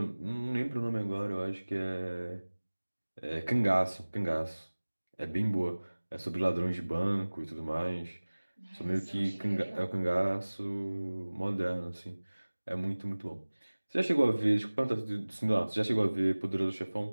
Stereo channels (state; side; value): inverted; both; correlation -1.00